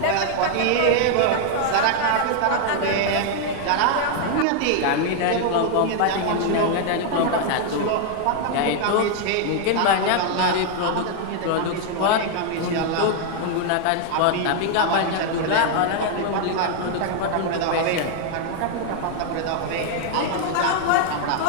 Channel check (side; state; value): both; different; correlation 0.00